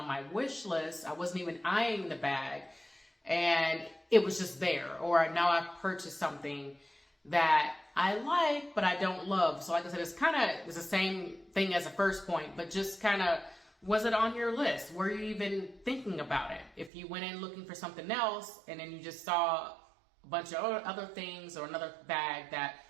my wish list. I wasn't even eyeing the bag. And it was just there. Or now I've purchased something that I like, but I don't love. So like I said, it's the same thing as the first point, but just kind of, was it on your list? Were you even thinking about it? If you went in looking for something else and then you just saw a bunch of other things or another bag that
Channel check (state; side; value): drops out; left; at 16.9 s